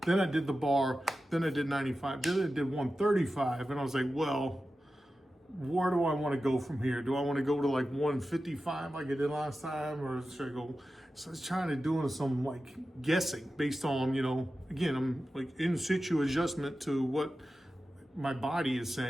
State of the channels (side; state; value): both; normal; correlation 0.93